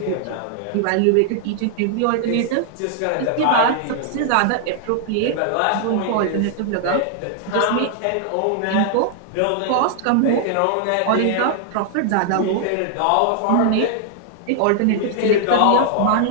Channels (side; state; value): both; different; correlation 0.00